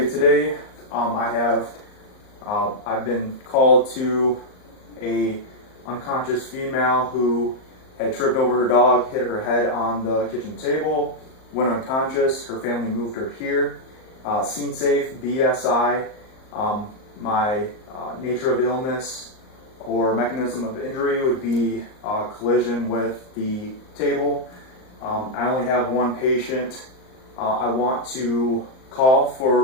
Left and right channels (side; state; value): right; late; 38 ms